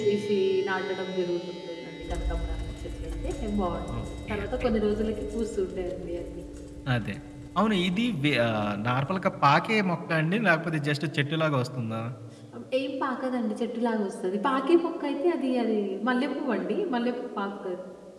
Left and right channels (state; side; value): identical; both; correlation 1.00